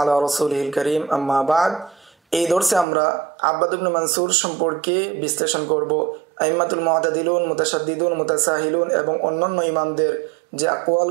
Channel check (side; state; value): left; drops out; at 2.9 s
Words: রাসূলিল কারীম আম্মা বাদ। এই দর্শে আমরা আব্বাদ ইবনে মানসুর সম্পর্কে বিশ্লেষণ করব। আইম্মাতুল মুতাদিলুন, মুতাশাদ্দিদুন, মুতাসাহিলুন এবং অন্যান্য ইমামদের যে